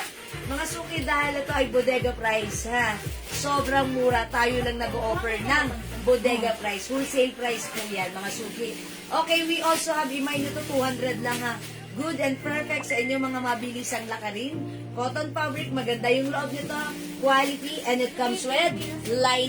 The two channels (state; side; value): identical; both; correlation 1.00